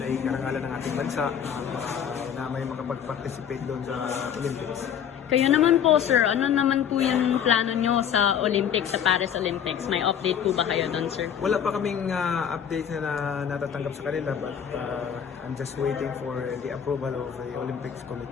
ay karangalan ng ating bansa na may makapag-participate doon sa Olympics. Kayo naman po, sir, ano naman po yung plano nyo sa Olympics, sa Paris Olympics? May update po ba kayo doon, sir? Wala pa kaming update na natatanggap sa kanila but I'm just waiting for the approval of the Olympics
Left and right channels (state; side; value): quieter; right; 8.4 dB